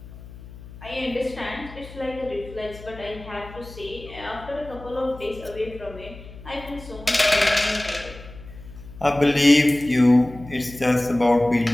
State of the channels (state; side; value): noise; left; hum, 16 dB below the sound